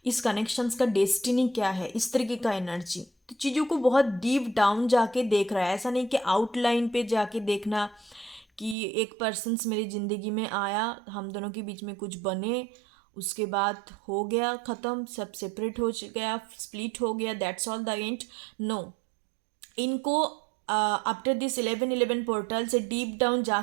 इस कनेक्शंस का डेस्टिनी क्या है, इस तरीके का एनर्जी। तो चीज़ों को बहुत डीप डाउन जाके देख रहा है, ऐसा नहीं कि आउटलाइन पे जाके देखना कि एक पर्सन्स मेरी ज़िंदगी में आया, हम दोनों के बीच में कुछ बने उसके बाद हो गया ख़त्म, सब सेपरेट हो गया, स्प्लिट हो गया, that's all the end. No, इनको आफ्टर दिस 11 पोर्टल से डीप डाउन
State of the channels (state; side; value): drops out; left; at 8.8 s